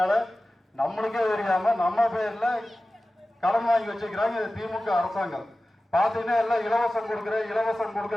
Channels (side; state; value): both; normal; correlation 0.96